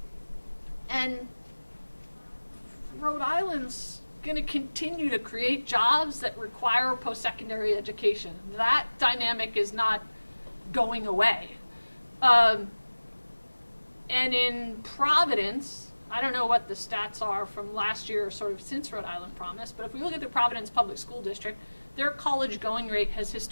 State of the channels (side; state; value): both; inverted; correlation -1.00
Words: And Rhode Island's going to continue to create jobs that require post-secondary education. That dynamic is not going away. And in Providence, I don't know what the stats are from last year or sort of since Rhode Island Promise, but if we look at the Providence Public School District, their college going rate has